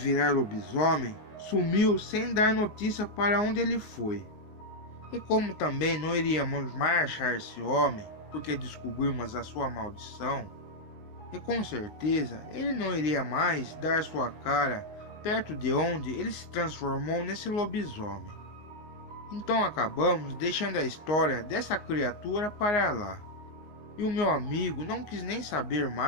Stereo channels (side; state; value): right; late; 19 ms